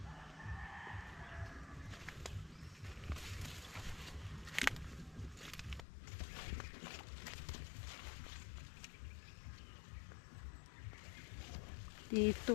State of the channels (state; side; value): drops out; right; at 5.9 s